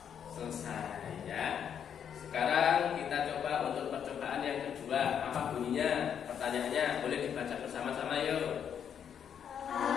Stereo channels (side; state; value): right; quieter; 8.3 dB